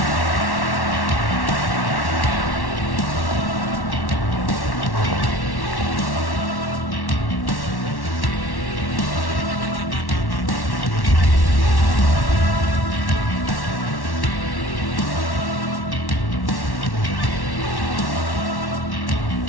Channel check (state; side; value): late; right; 1.1 ms